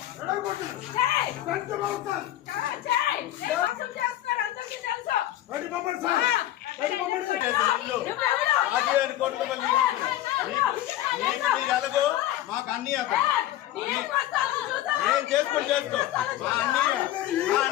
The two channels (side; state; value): right; quieter; 13.8 dB